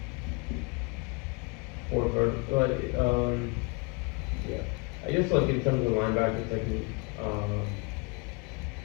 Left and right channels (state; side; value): quieter; right; 28.8 dB